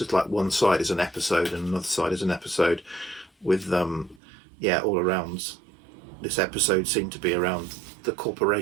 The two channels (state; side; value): drops out; left; at 4.2 s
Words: like one side is an episode and another side is an episode with yeah, all around this episode seemed to be around the